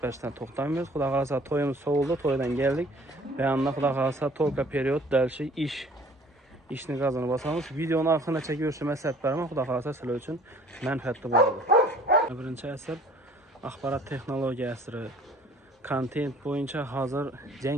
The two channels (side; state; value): both; normal; correlation 0.52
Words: berishdan to'xtamaymiz. Xudo xolasa, to'yimiz so'ldi, to'ydan keldik. Ve yanında xudo xolasa to'yga period dalshi ishni gazini bosamiz. Videoni oxirida chekib maslahat beraman. Xudo xolasa sizlar uchun manfaatli bo'ladi. Birinchi asr axborot texnologiya asri. Kontent bo'yicha hozir